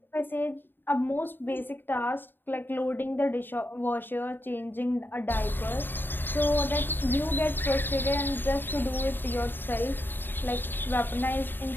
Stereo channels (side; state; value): right; late; 0.095 ms